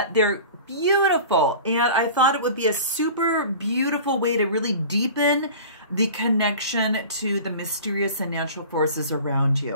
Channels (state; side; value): inverted; both; correlation -0.39